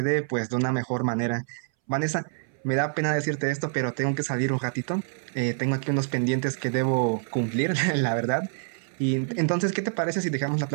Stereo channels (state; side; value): silent; left; 60 dB below the other